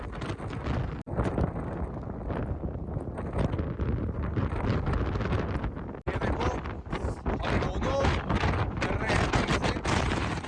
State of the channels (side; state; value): both; identical; correlation 1.00